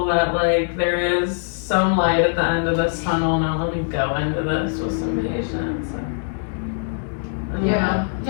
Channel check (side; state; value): right; silent; digital silence